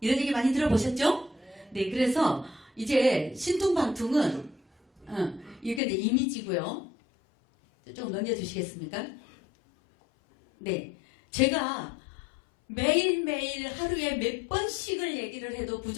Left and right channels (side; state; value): right; drops out; at 5.8 s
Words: 이런 얘기 많이 들어보셨죠? 네, 그래서 이제 신통방통은 이게 내 이미지고요. 조금 넘겨주시겠습니까? 네, 제가 매일매일 하루에 몇 번씩을 얘기를 해도